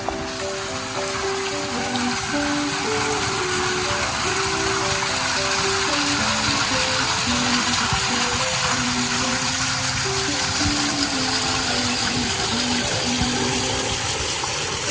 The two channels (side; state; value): both; identical; correlation 1.00